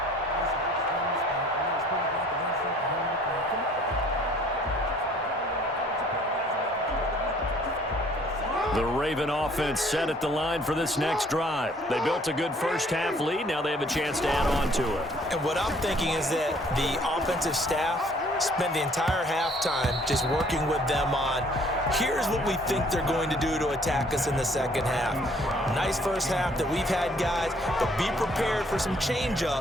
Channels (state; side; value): normal; both; correlation 0.58